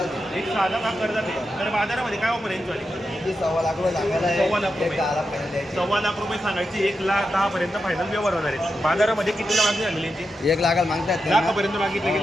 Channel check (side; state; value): both; normal; correlation 0.88